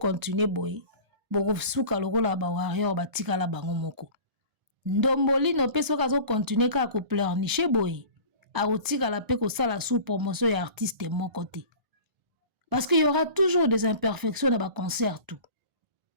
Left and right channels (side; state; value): left; late; 1.4 ms